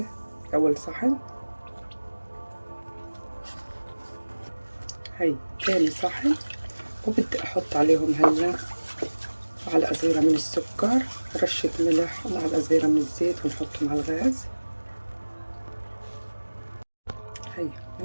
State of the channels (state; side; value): inverted; both; correlation -1.00